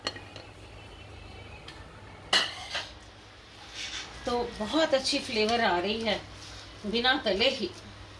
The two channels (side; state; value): both; identical; correlation 1.00